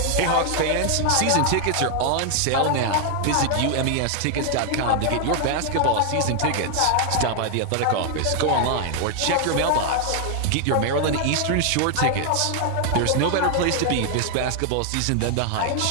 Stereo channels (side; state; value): both; different; correlation 0.00